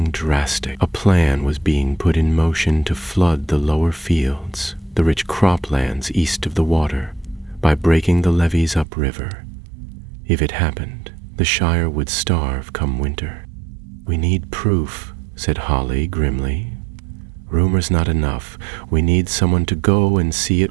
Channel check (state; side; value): drops out; left; at 8.8 s